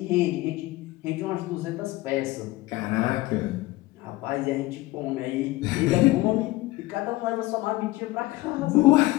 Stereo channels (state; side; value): quieter; right; 19.1 dB